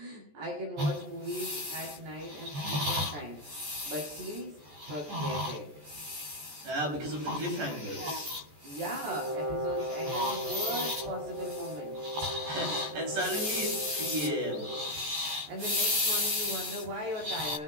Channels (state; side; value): late; left; 14 ms